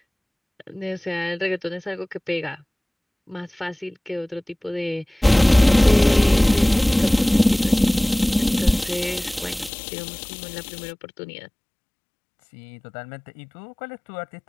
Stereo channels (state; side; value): drops out; right; at 9.7 s